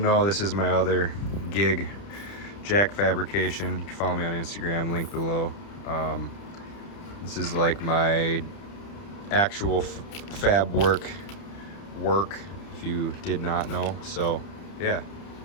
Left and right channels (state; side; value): late; right; 30 ms